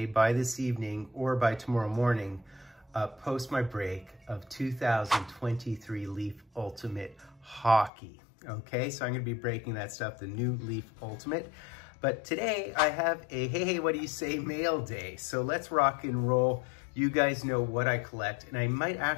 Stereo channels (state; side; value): drops out; right; at 7.9 s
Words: by this evening or by tomorrow morning, post my break of 2023 Leaf Ultimate Hockey. Okay, so I'm gonna be breaking that stuff, the new Leaf Ultimate. But today I have a hey, what do you say mail day. So let's rock and roll. You guys know what I collect, and I might